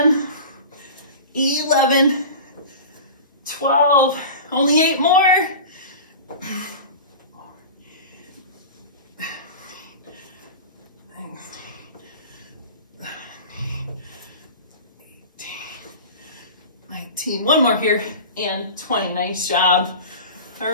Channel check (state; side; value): inverted; both; correlation -0.34